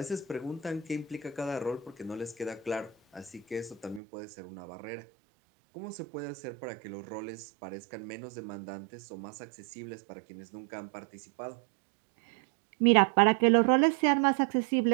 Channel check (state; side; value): drops out; left; at 4.0 s